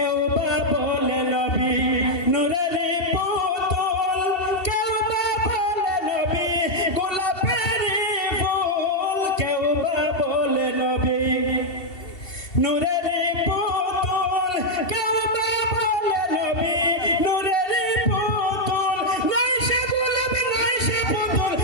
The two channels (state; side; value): late; right; 2.7 ms